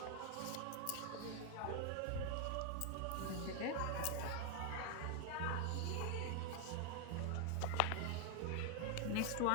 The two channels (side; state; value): both; different; correlation 0.00